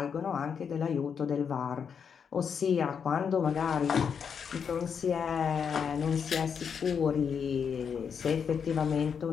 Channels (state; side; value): quieter; right; 6.9 dB